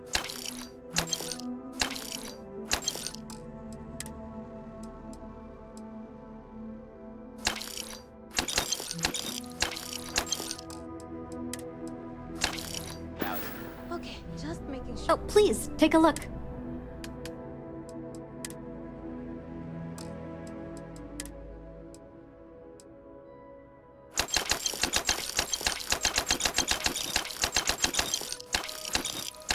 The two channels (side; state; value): both; identical; correlation 1.00